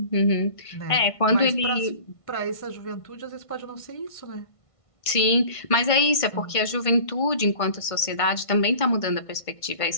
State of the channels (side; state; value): right; late; 1.5 ms